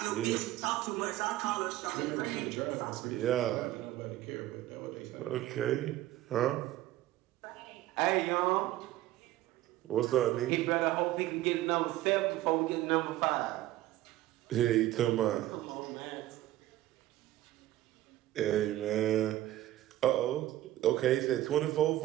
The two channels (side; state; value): left; quieter; 14.9 dB